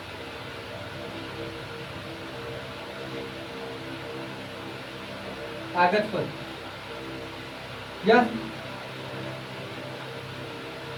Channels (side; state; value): both; identical; correlation 1.00